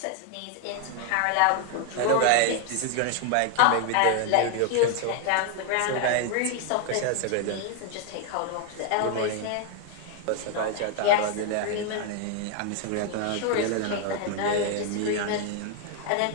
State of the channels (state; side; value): different; both; correlation 0.00